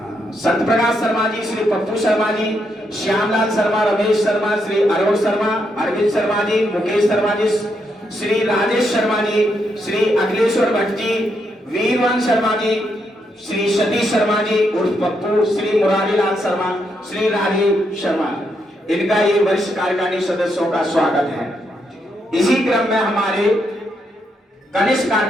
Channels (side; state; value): both; normal; correlation 0.79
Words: सत्यप्रकाश शर्मा जी, श्री पप्पू शर्मा जी, श्यामलाल शर्मा, रमेश शर्मा, श्री अरुण शर्मा, अरविंद शर्मा जी, मुकेश शर्मा जी, श्री राजेश शर्मा जी, श्री अखिलेश्वर भट्ट जी, वीरवंश शर्मा जी, श्री सतीश शर्मा जी उर्फ पप्पू, श्री मुरारीलाल शर्मा, श्री राजीव शर्मा, इनका ये वरिष्ठ कार्यकारिणी सदस्यों का स्वागत है। इसी क्रम में हमारे कनिष्ठ